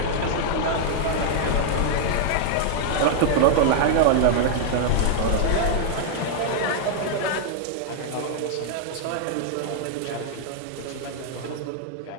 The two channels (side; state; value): both; different; correlation -0.01